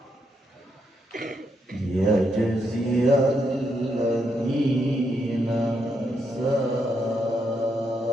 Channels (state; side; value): normal; both; correlation 0.79